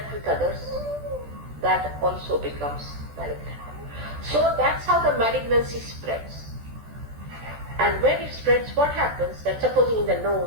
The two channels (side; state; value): left; late; 14 ms